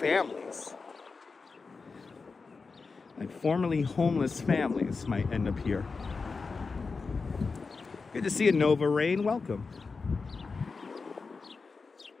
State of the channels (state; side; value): quieter; right; 4.5 dB